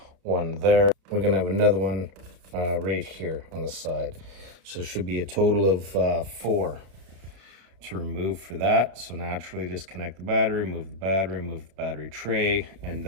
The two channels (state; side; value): late; left; 31 ms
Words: one there. We're gonna have another one right here on the side. So it should be a total of 4 to remove for that. So naturally disconnect the battery, move the battery tray, and